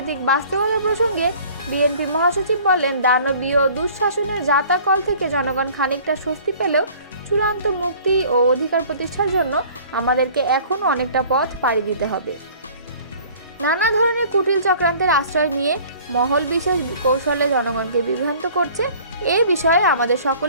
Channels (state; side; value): inverted; both; correlation -0.50